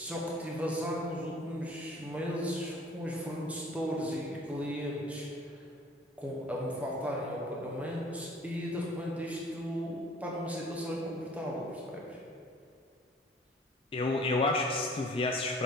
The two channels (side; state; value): both; normal; correlation 0.51